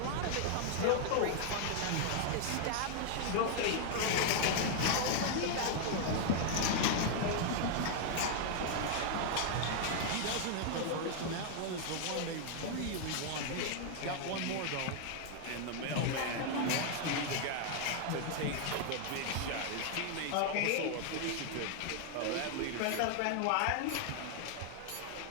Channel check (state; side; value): different; both; correlation 0.00